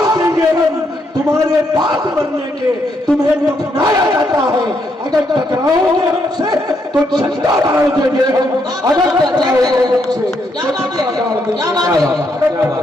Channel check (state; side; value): normal; both; correlation 0.76